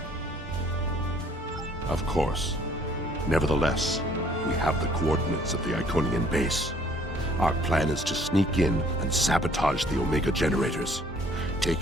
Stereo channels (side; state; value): both; normal; correlation 0.60